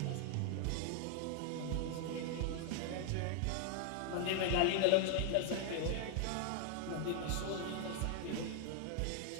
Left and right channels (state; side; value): different; both; correlation 0.00